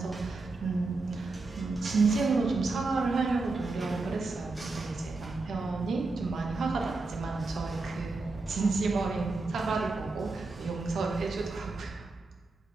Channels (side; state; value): left; quieter; 3.6 dB